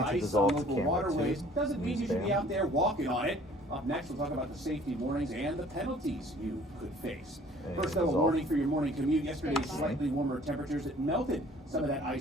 ice on local waterways doesn't mean you should be out there walking on it. Up next, we'll talk about the safety warnings and the penalties you could face. First, though, a warning for your morning commute. Yesterday's slightly warmer temperatures that melted some of that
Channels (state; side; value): normal; both; correlation 0.53